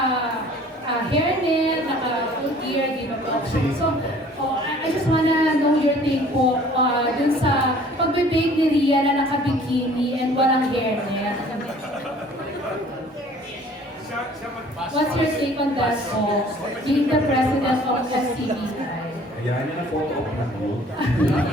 hairnet, full gear, di ba po? So, I just wanna know your take po dun sa pagbe-bake ni Ria na naka-bikini and walang hairnet. What's your take on that po? Being the president of SCBI. Kaya niya na photo op na po.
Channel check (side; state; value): both; normal; correlation 0.52